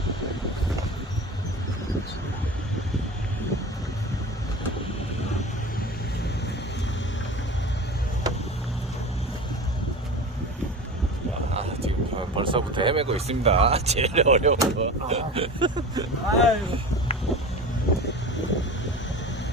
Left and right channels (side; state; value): both; normal; correlation 0.32